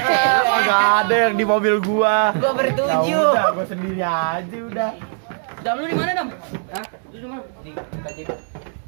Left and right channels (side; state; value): left; silent; digital silence